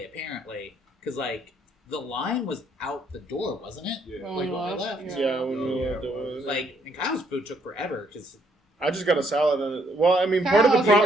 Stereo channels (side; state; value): both; normal; correlation 0.69